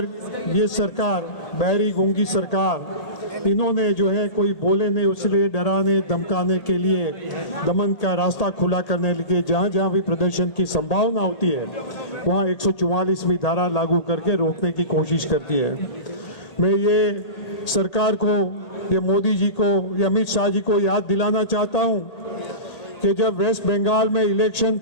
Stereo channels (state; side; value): late; right; 1.8 ms